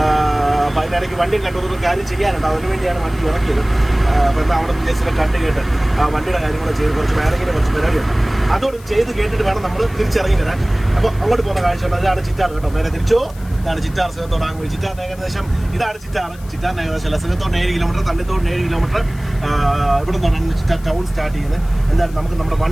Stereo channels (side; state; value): left; noise; hiss, 23 dB below the sound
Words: അപ്പോൾ അതിനിടയ്ക്ക് വണ്ടിയും കണ്ടൊരു കാര്യം ചെയ്യാനുണ്ട്. അതിനുവേണ്ടിയാണ് വണ്ടി ഇറക്കിയത്. അപ്പോൾ എന്താ അവിടെ ജസ്റ്റ് കണ്ട് കേട്ട് ആ വണ്ടിയുടെ കാര്യങ്ങൾ ചെയ്ത് കുറച്ച് വേണമെങ്കിലും കുറച്ച് പരിപാടിയുണ്ട്. അതോട് ചെയ്ത് കേട്ടിട്ട് വേണം നമ്മൾ തിരിച്ചിറങ്ങി വരാൻ. അപ്പോൾ അങ്ങോട്ട് പോകുന്ന കാഴ്ചയുണ്ട്. അതാണ് ചിറ്റാർ കേട്ടോ. നേരെ തിരിച്ചോ. ഇതാണ് ചിറ്റാർ. സിഹത്തോടാകുമ്പോൾ ചിറ്റാറിന് ഏകദേശം ഇതാണ് ചിറ്റാറിന് ഏകദേശം അല്ല, സിഹത്തോടിന് 7 കിലോമീറ്റർ, തണ്ണിത്തോടിന് 7 കിലോമീറ്റർ. ഇവിടെ നിന്നാണ് ചിറ്റാർ ടൗൺ സ്റ്റാർട്ട് ചെയ്യുന്നത്. എന്തായാലും നമുക്ക് നമ്മുടെ